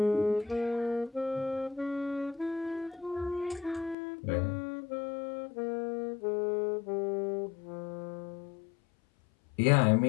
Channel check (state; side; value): drops out; right; at 4.0 s